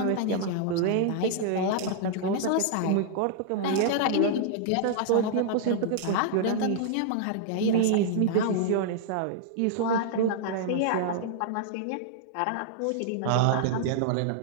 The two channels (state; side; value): different; both; correlation -0.01